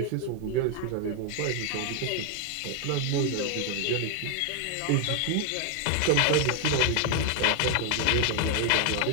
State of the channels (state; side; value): different; both; correlation 0.01